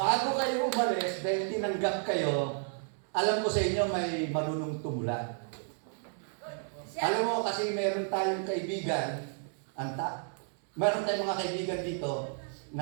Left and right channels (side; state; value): left; silent; 56 dB below the other